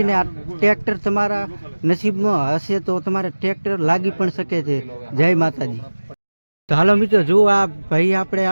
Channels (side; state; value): both; inverted; correlation -1.00